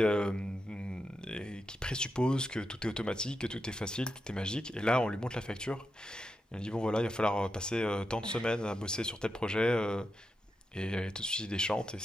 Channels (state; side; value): normal; both; correlation 0.87